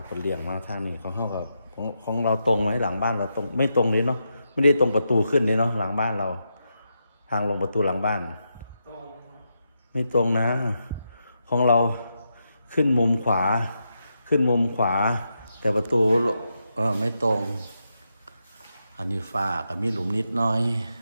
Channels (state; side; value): inverted; both; correlation -0.84